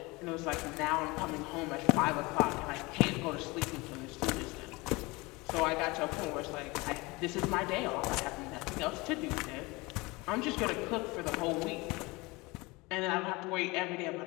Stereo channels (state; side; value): quieter; right; 23.8 dB